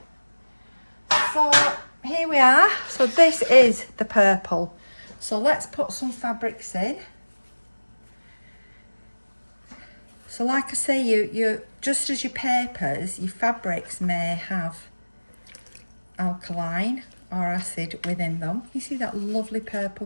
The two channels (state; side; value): inverted; both; correlation -1.00